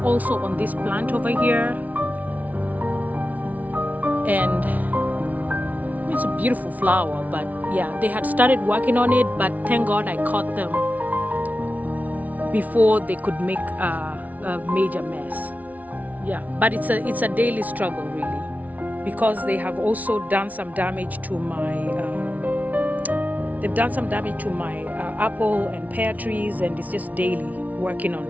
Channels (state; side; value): late; left; 0.073 ms